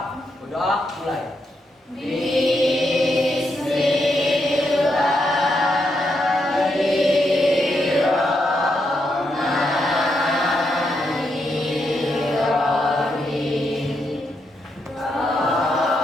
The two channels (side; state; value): both; normal; correlation 0.81